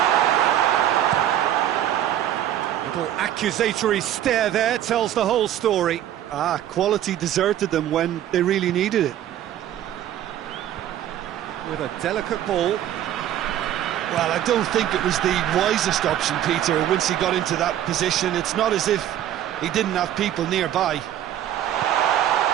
Little accusatory stare there tells the whole story. Quality deserted them when they really needed it. With a delicate ball. Well, I don't think it was the wisest option, Peter, once he got into that position. It's not as if he didn't have people nearby.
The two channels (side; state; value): left; quieter; 11.6 dB